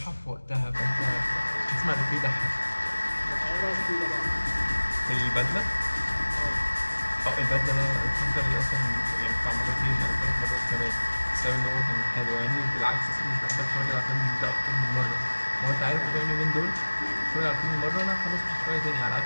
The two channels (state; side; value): inverted; both; correlation -1.00